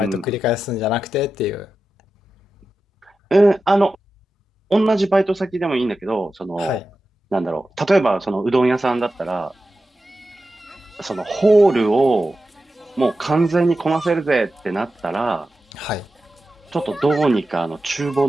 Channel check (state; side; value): normal; both; correlation 0.92